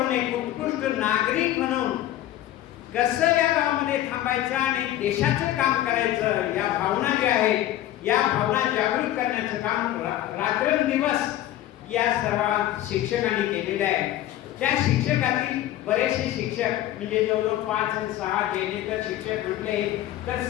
एक उत्कृष्ट नागरिक म्हणून कसं या गावामध्ये थांबायचं आणि देशाचं काम करायचं, या भावना ज्या आहेत या भावना जागृत करण्याचं काम रात्रंदिवस या सर्व शिक्षकांनी केलेलं आहे. त्या शिक्षकातील बरेचसे शिक्षक म्हणजे जवळजवळ 5 आणि 6 जेणेकर शिक्षक म्हटले तर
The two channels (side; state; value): right; quieter; 13.6 dB